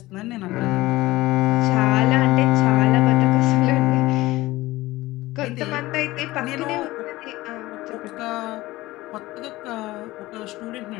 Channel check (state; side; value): quieter; right; 18.6 dB